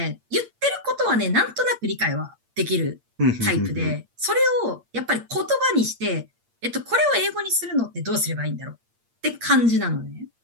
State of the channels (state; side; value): late; left; 8.6 ms